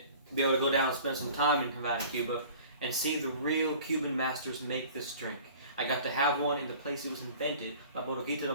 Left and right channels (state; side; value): inverted; both; correlation -0.46